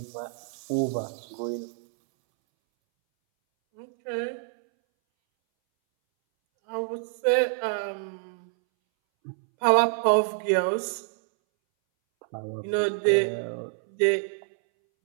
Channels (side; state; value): left; silent; 60 dB below the other